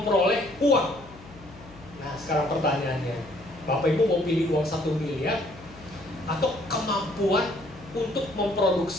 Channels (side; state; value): left; noise; hum, 20 dB below the sound